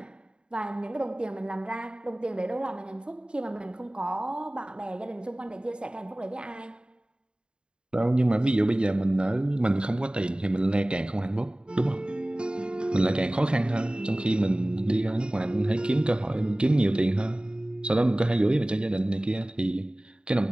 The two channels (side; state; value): left; late; 0.051 ms